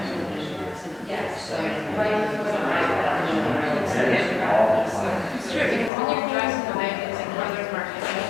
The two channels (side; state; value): right; drops out; at 5.9 s